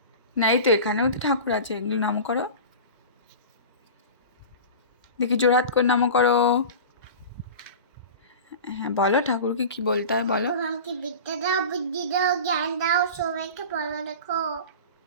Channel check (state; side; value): inverted; both; correlation -0.33